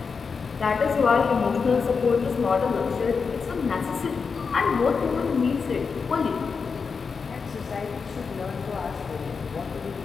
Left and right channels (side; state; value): right; quieter; 5.3 dB